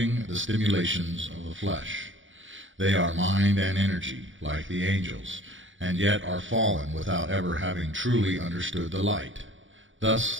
the stimulations of the flesh. They are mind and energy, like the angels, and yet are fallen without ever having truly understood the light. Thus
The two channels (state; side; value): late; left; 0.56 ms